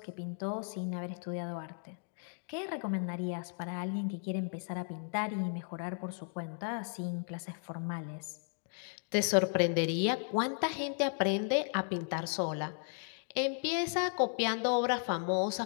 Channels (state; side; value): silent; right; 54 dB below the other